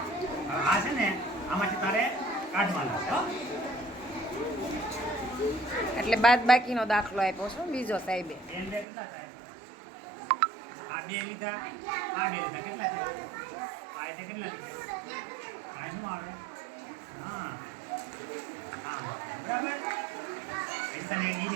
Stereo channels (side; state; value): left; drops out; at 8.8 s